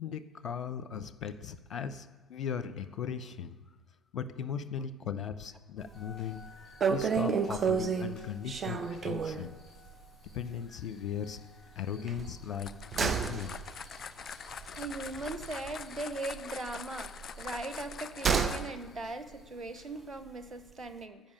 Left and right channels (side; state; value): both; normal; correlation 0.51